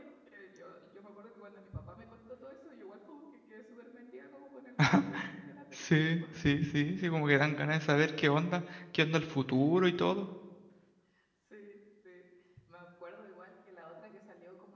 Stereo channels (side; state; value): both; identical; correlation 1.00